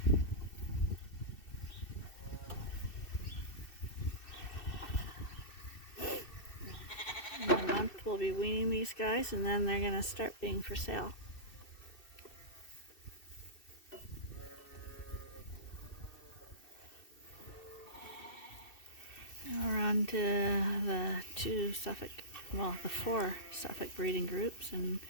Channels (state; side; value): late; right; 2.7 ms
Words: In a month we'll be weaning these guys, and then they're going to start being for sale. Now we're on to the the 4 Suffolk breeding groups in